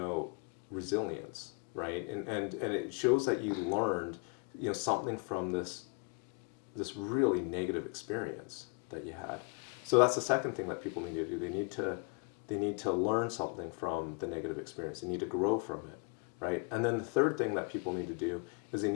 resilience, right? And it shows that you learned, something from this really negative experience that you had. So that's the second thing that people need to do. They need to learn something from the negative experience. They need to grow from it, right? And then the third thing that people need to do is they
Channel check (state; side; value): quieter; right; 33.7 dB